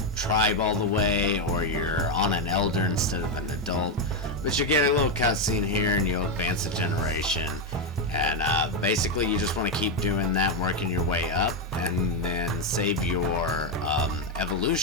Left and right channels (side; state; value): both; normal; correlation 0.05